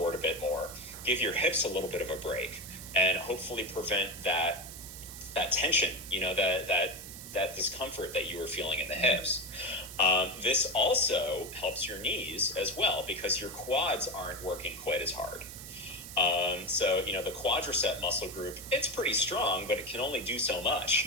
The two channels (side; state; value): right; noise; hiss, 12 dB below the sound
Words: a bit more, give your hips a little bit of a break, and hopefully prevent that tension, you know, that discomfort that you were feeling in the hips. This also helps your knees as well because your quads aren't working quite as hard. So, you know, the quadricep muscle group, it's pretty strong, but it can only do so much.